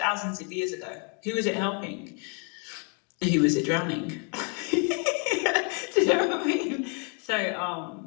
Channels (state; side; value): quieter; right; 38.4 dB